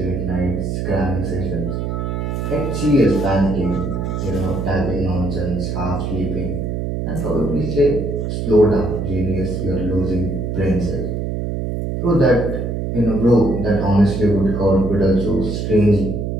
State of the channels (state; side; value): noise; right; hum, 2 dB below the sound